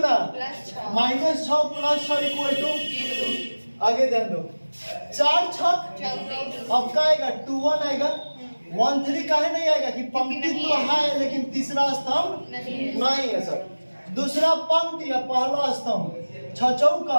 -6 + 6 इक्वल टू, आगे ध्यान दो 4 छक, अब का आएगा 2 1 आएगा, 1 3 काहे नहीं आएगा कि पंक्ति तो है लेकिन तीसरा स्तंभ नहीं है सर। दूसरा पंक्ति या पहला स्तंभ 6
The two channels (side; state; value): both; inverted; correlation -1.00